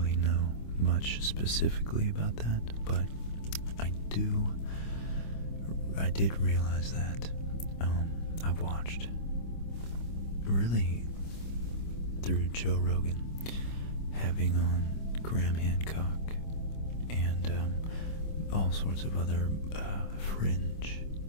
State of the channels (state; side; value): late; right; 25 ms